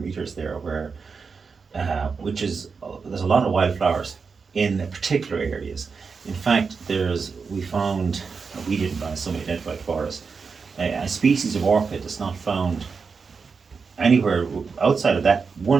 there, where which is there's a lot of wildflowers in particular areas. In fact, we found, we didn't find, somebody identified for us, a species of orchid that's not found anywhere outside of that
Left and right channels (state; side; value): quieter; left; 5.2 dB